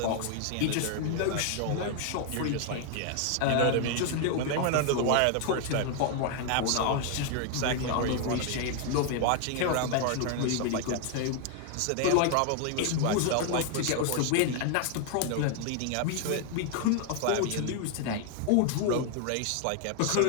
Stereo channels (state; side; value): different; both; correlation 0.00